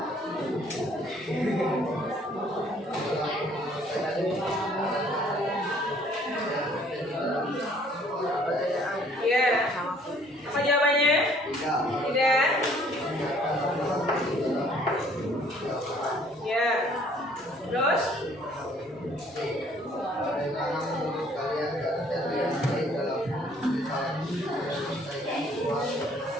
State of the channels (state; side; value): normal; both; correlation 0.59